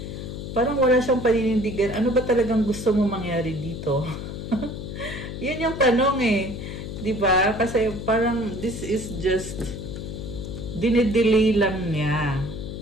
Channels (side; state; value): left; noise; hum, 8 dB below the sound